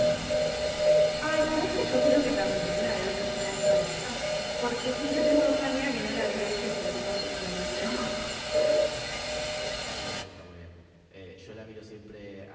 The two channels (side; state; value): both; identical; correlation 1.00